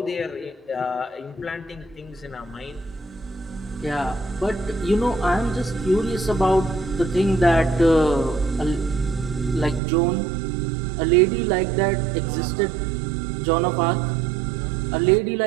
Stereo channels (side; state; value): left; drops out; at 9.8 s